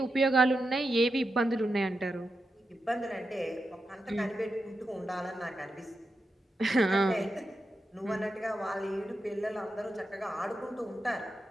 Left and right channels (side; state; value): both; normal; correlation 0.88